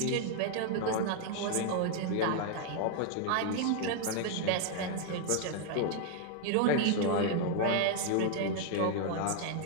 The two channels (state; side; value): different; both; correlation 0.00